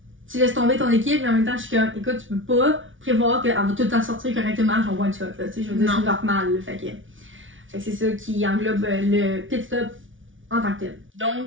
tu laisses tomber ton équipe, mais en même temps, je suis comme, écoute, tu peux pas prévoir qu'elle va tout le temps sortir correctement, genre one shot, là, je veux dire, c'est normal, là, fait que c'est ça qui englobe le pit stop en tant que tel.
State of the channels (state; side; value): late; left; 0.57 ms